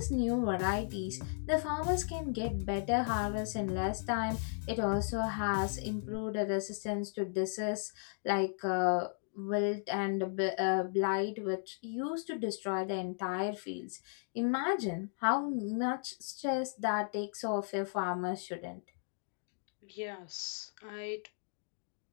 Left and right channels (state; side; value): silent; right; digital silence